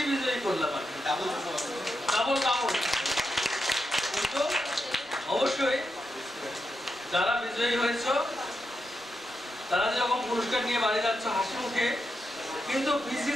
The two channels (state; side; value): normal; both; correlation 0.85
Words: বিজয়ী করলাম, ডাবল। কিন্তু অবশ্যই যারা বিজয়ী হয়েছ তারা যেরকম পুরস্কার নিয়ে বাড়ি যাচ্ছ হাসি মুখে, কিন্তু